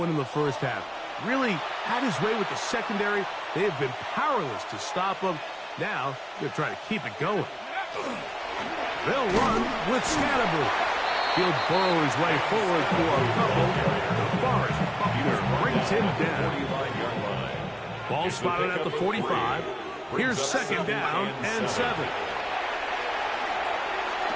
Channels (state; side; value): identical; both; correlation 1.00